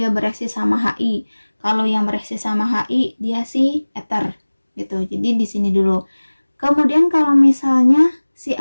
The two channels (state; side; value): inverted; both; correlation -1.00